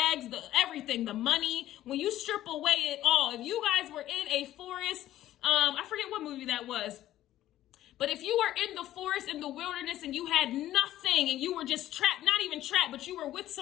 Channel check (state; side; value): quieter; right; 13.6 dB